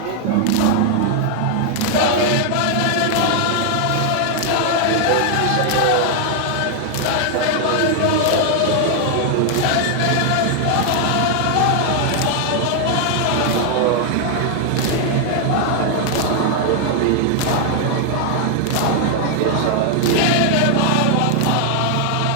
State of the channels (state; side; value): different; both; correlation 0.00